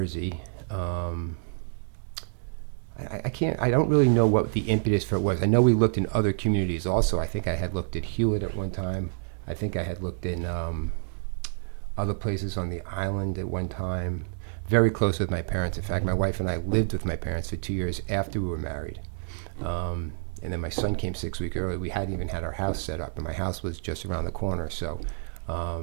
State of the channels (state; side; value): silent; left; digital silence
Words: I don't really know what the impetus for it was. I know we looked in other communities also. I think I had looked at Hewlett at one time. I think I had looked in other places on the island at one time. Very close with my parents. In fact, my wife and I lived with my parents for 2 years after we were married. And then my son came 6 weeks early. We hadn't even had our house set up, and my house was just around the corner. So